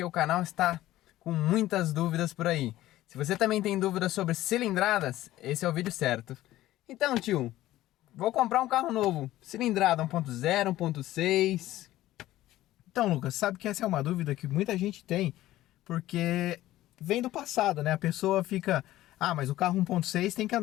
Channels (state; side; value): quieter; right; 15.3 dB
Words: o canal está com muitas dúvidas por aí. Se você também tem dúvidas sobre cilindradas, esse é o vídeo certo. Então tio, vou comprar um carro novo, cilindrada 1.0, 1.6... Então, Lucas, sabe que essa é uma dúvida que muita gente tem, porque vem do passado, né? A pessoa fica... Ah, mas o carro 1.6 tem que